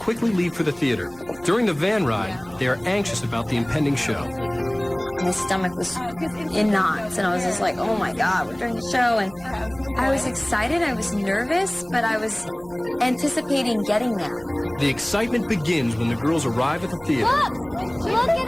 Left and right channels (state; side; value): noise; right; hum, 25 dB below the sound